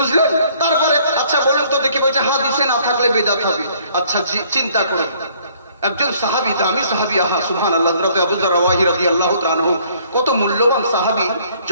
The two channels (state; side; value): inverted; both; correlation -0.60